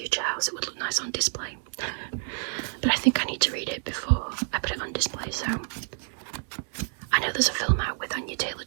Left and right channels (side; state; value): left; silent; 55 dB below the other